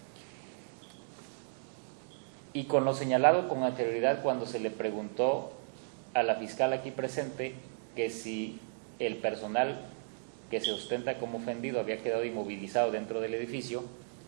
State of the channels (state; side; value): silent; left; digital silence